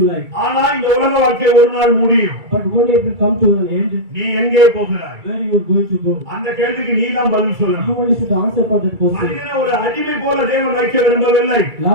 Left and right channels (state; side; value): late; left; 2.3 ms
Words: like. ஆனா இந்த உலக வாழ்க்கை ஒரு நாள் முடியும். But one day it will come to an end. நீ எங்கே போகிறாய்? Where you are going to go? அந்த கேள்விக்கு நீ தான் பதில் You சொல்லணும். only should answer for that question. மனிதனை ஒரு அடிமை போல தேவன் வைக்க விரும்பவில்லை.